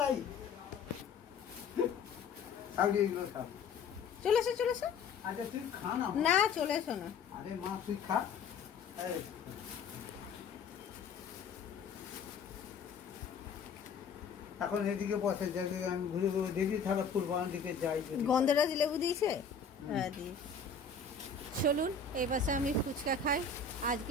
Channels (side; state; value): right; quieter; 5.3 dB